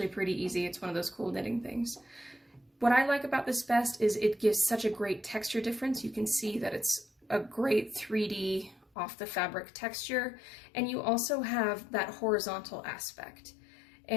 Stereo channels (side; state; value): right; drops out; at 8.8 s